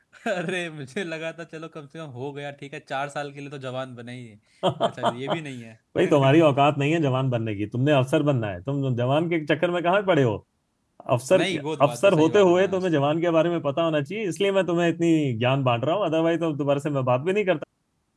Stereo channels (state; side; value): identical; both; correlation 1.00